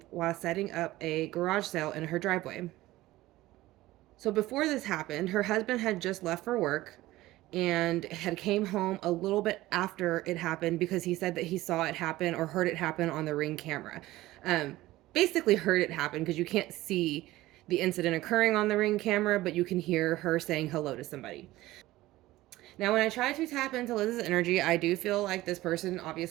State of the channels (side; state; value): left; quieter; 17.1 dB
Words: while setting up a garage sale in her driveway. So before this happened, her husband had just left for work and had came home a little bit after it happened because he said that he saw it happen or heard it happen on the Ring camera. Um, Basically heard it happen because you can't see the incident occurring on the Ring camera, but you can hear her saying hello to somebody. Now, when I try to tap into Liz's energy, I do feel like this person